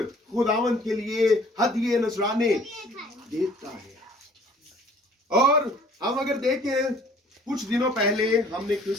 खुदावंद के लिए हदिये नजराने देता है। और हम अगर देखें, कुछ दिनों पहले हमने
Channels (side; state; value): both; normal; correlation 0.54